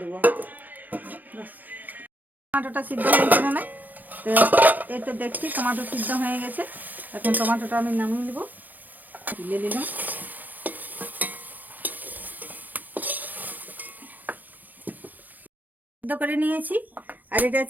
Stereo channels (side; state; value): left; late; 0.084 ms